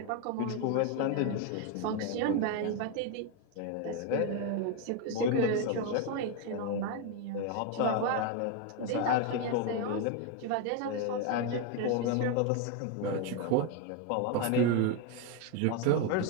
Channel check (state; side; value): different; both; correlation 0.02